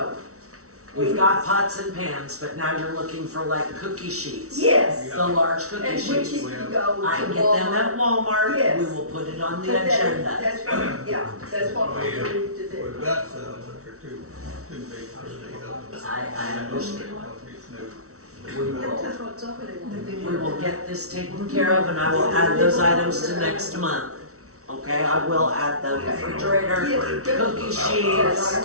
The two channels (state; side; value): late; left; 0.64 ms